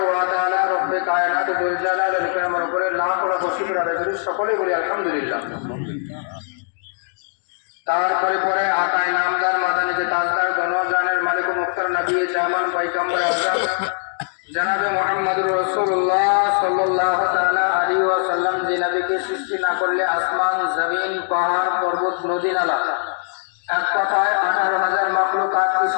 ওয়া তাআলা রব্বে কায়নাত জুল জালাল ইকরামের উপরে লাখ লাখ শুকর আদায় করি সকলে বলি আলহামদুলিল্লাহ। তারপরে পরে আকায় নামদার মাদানিকে তাজদার গণজানের মালিক মুখতার নবী জামান পয়গম্বর আযম জনাবে মুহাম্মদুর রাসূলুল্লাহ সাল্লাল্লাহু তাআলা আলাইহি ওয়াসাল্লাম যে নবীকে সৃষ্টি না করলে আসমান জমিন পাহাড় পর্বত নদী নালা এক কথায় 18,000 মাখলুকাতকে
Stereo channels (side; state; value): right; silent; digital silence